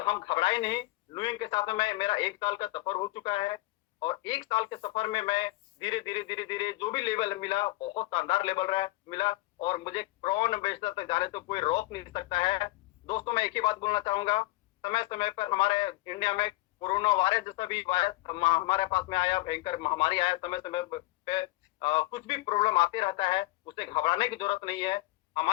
घबराए नहीं। लुइंग के साथ में मेरा 1 साल का सफर हो चुका है। और 1 साल के सफर में मैं धीरे-धीरे जो भी लेवल मिला, बहुत शानदार लेवल रहा मिला। और मुझे ब्रांड एम्बेसडर तक जाने तो कोई रोक नहीं सकता है। दोस्तों, मैं एक ही बात बोलना चाहूँगा, समय-समय पर हमारे इंडिया में कोरोना वायरस जैसा भी वायरस हमारे पास में आया, भयंकर महामारी आया, समय-समय पे कुछ भी प्रॉब्लम आते रहता है, उससे घबराने की जरूरत नहीं है।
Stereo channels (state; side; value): quieter; right; 19.7 dB